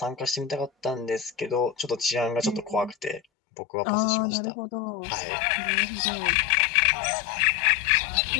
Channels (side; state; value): right; drops out; at 3.2 s